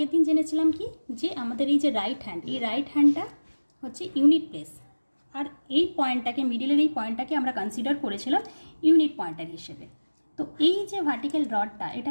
দিন জেনেছিলাম কি, যে আমাদের এই যে রাইট হ্যান্ড, এই রাইট হ্যান্ডটা হচ্ছে ইউনিট প্লেস, আর এই পয়েন্টটাকে, মিডিলের এই পয়েন্টটাকে আমরা কনসিডার করেছিলাম ইউনিট পয়েন্টার হিসেবে। তো এই যে ভার্টিক্যাল রডটা,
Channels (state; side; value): inverted; both; correlation -1.00